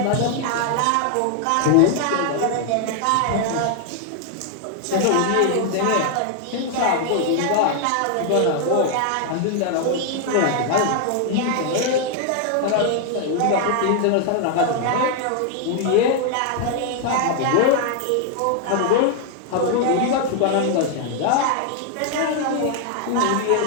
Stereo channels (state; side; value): different; both; correlation 0.00